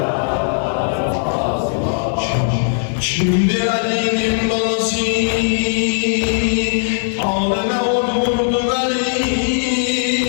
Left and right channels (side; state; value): right; silent; digital silence